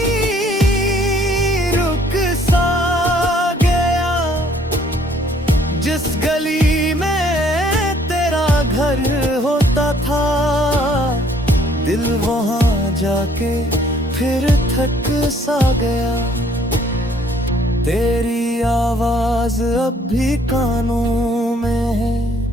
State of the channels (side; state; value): both; normal; correlation 0.61